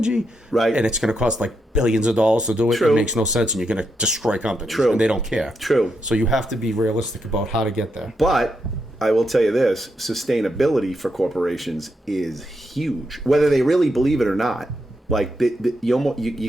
Right. and it's going to cost like billions of dollars to do it. True. It makes no sense, and you're going to destroy companies. True. And they don't care. True. So you have to be realistic about how to get there. But I will tell you this: sustainability for corporations is huge, whether they really believe it or not. Like you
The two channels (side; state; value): both; normal; correlation 0.82